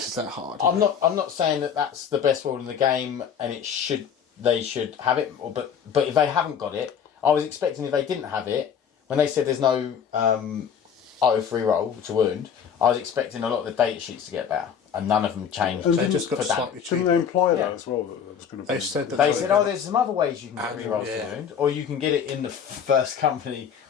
that hard. I'm not saying that that's the best rule in the game, and they should have it. But if they haven't got it, I was expecting if they didn't have it, when they said there's no oath reroll to wound, I was expecting a lot of the data sheets to get better, and none of them changed. They just got for that. slightly Didn't cheaper. they imply Yeah. that as well? That there was going to be. They said that They were said, gonna- there's some other ways you can get rerolls to wound, or you can get it in the first company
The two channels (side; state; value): right; quieter; 7.7 dB